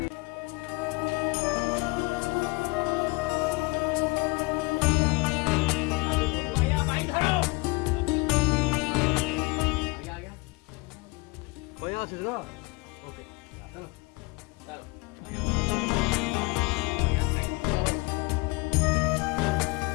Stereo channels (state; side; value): quieter; right; 26.5 dB